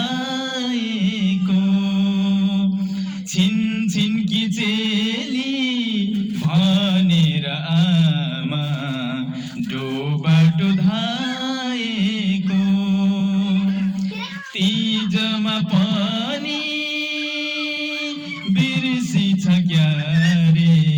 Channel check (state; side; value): identical; both; correlation 1.00